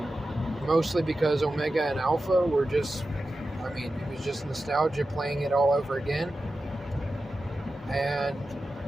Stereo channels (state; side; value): normal; both; correlation 0.92